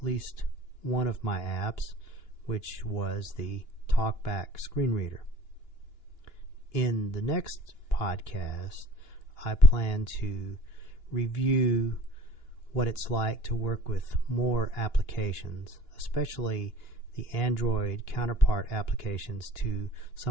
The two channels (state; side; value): late; right; 2.9 ms